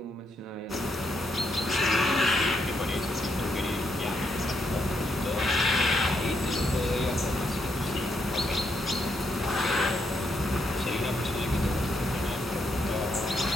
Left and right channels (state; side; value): normal; both; correlation 0.78